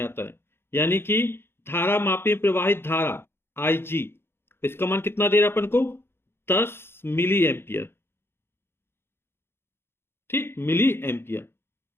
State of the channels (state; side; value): late; right; 0.11 ms